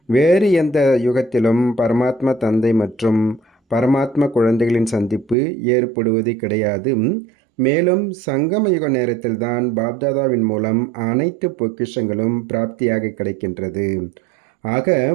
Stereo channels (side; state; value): left; drops out; at 5.4 s